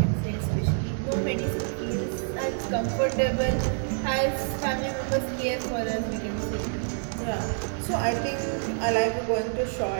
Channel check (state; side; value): silent; left; 60 dB below the other